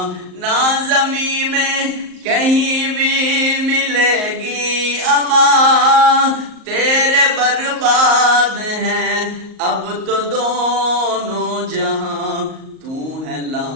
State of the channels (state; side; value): late; left; 38 ms